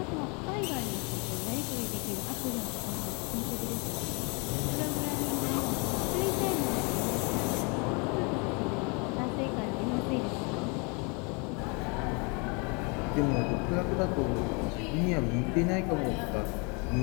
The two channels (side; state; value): right; quieter; 32.0 dB